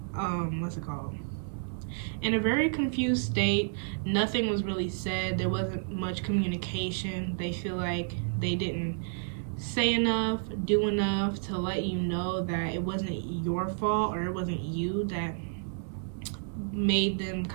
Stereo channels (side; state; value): left; silent; 57 dB below the other